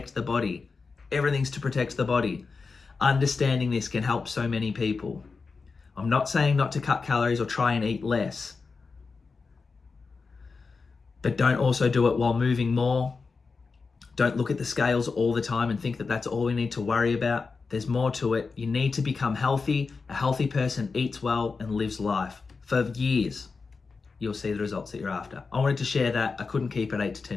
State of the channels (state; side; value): quieter; right; 4.6 dB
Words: the body. Everything's to protect the body. Understanding this can help so many people. I'm not saying not to cut calories or try and eat less. But don't also do it while moving more. Don't look at the scales all the time and think that that's all we need to worry about. There's more to it. You need to become healthy. A healthy person eats well and lives life for years. You'll see the results that you're after. I wanted to share that. I couldn't keep it 8 to